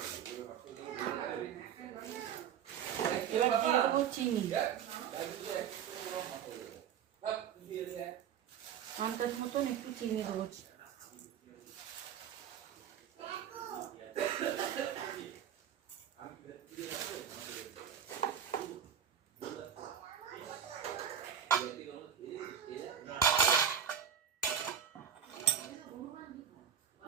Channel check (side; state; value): left; quieter; 8.5 dB